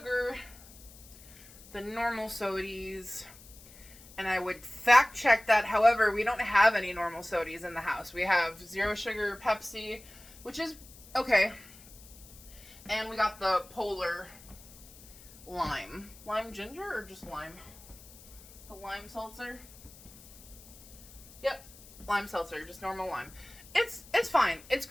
than normal sodies. And I would fact check that. However, we don't have any normal sodies in the house. We have 0 sugar Pepsi, which is okay. And we got the Polar lime. Lime ginger or just lime? The lime seltzer? Yep. Lime seltzer. Just normal lime. It's fine. It's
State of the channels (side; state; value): left; noise; hiss, 20 dB below the sound